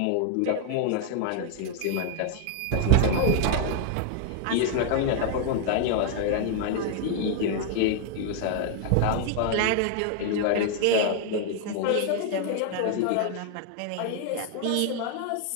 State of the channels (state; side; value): different; both; correlation 0.00